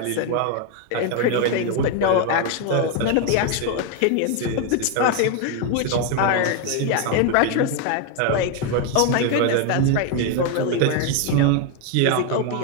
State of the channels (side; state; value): both; different; correlation 0.01